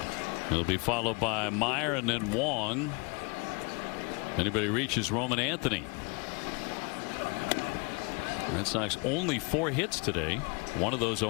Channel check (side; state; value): right; quieter; 30.3 dB